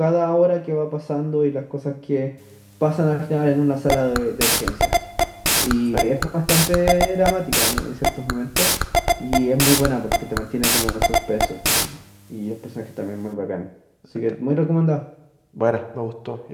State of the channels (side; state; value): both; identical; correlation 1.00